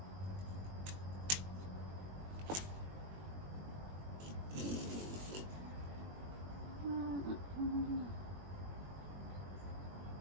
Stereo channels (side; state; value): left; late; 21 ms